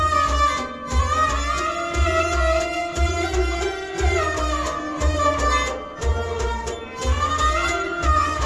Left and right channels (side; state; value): both; identical; correlation 1.00